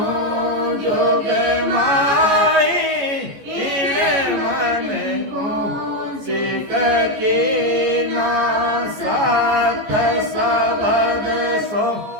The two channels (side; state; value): left; late; 14 ms